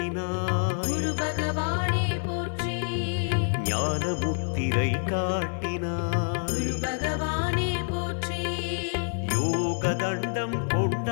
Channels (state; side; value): silent; right; digital silence